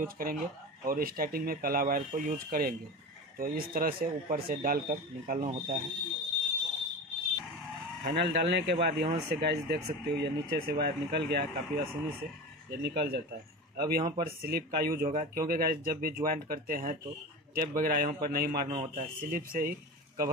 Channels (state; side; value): normal; both; correlation 0.29